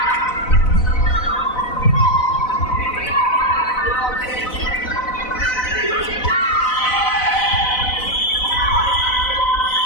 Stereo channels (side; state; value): right; late; 4.0 ms